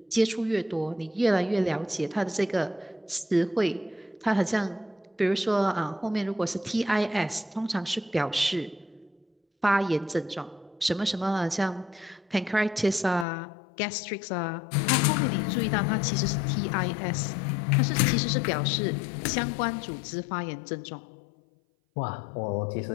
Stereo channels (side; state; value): right; drops out; at 13.2 s